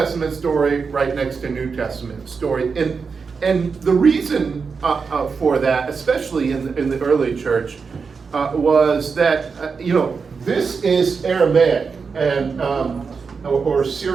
story right next to New Testament story. And the reason for that, especially in the early church, was that, this is Aramaic and or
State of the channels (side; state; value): left; quieter; 5.3 dB